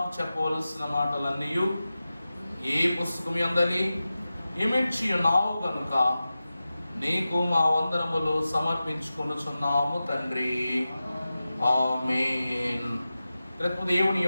చెప్పవలసిన మాటలన్నీ ఈ పుస్తకం యందలి ఇమిడ్చి ఉన్నావు గనుక నీకు మా వందనములు సమర్పించుకొనుచున్నాము తండ్రి. ఆమేన్. రేపు దేవుని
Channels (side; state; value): both; inverted; correlation -0.94